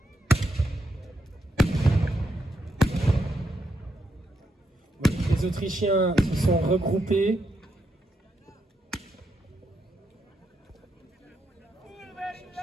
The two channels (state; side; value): normal; both; correlation 0.80